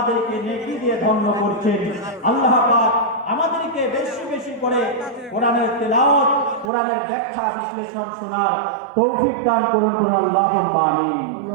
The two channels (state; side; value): drops out; left; at 6.7 s